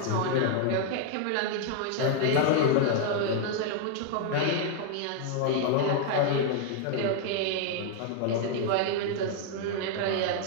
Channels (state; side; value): different; both; correlation 0.00